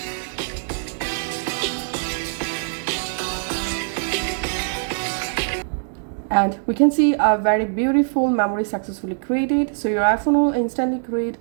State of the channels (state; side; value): silent; left; digital silence